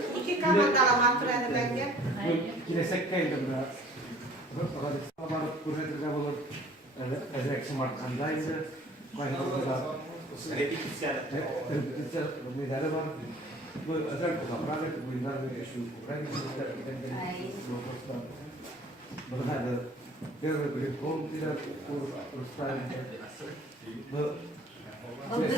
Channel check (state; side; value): normal; both; correlation 0.52